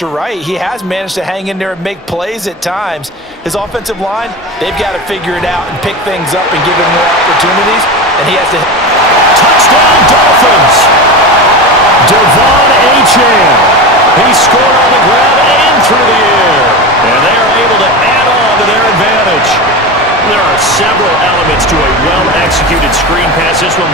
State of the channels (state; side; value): normal; both; correlation 0.24